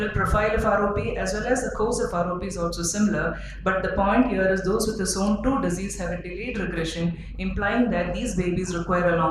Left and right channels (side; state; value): both; identical; correlation 1.00